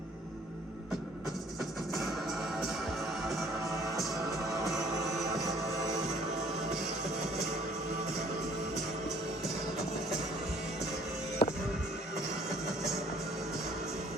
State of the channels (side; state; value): both; normal; correlation 0.57